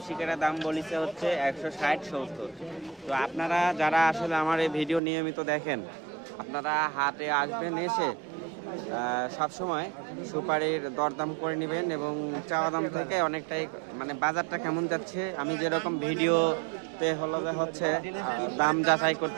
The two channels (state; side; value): drops out; left; at 5.0 s